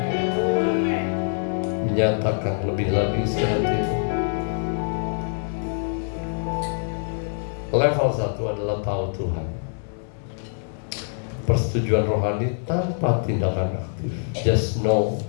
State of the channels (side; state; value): right; silent; 62 dB below the other